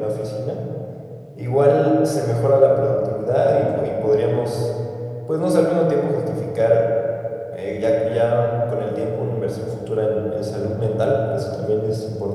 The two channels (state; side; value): identical; both; correlation 1.00